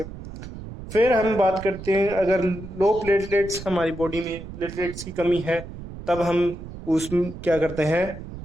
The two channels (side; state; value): right; noise; rumble, 12 dB below the sound